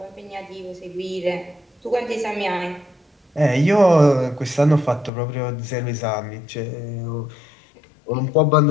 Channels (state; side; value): drops out; right; at 5.1 s